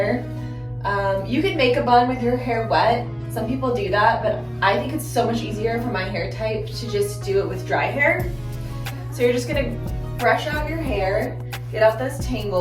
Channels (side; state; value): both; identical; correlation 1.00